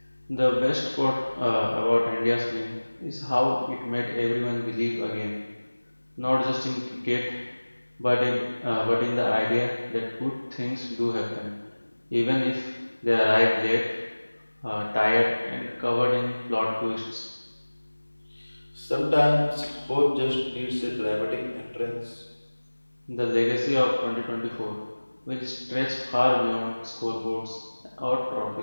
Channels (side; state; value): both; inverted; correlation -1.00